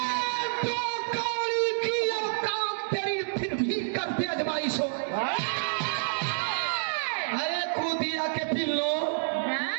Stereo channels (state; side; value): silent; left; digital silence